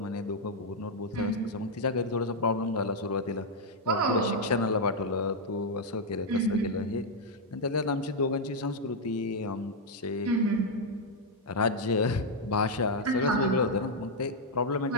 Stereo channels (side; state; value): both; normal; correlation -0.02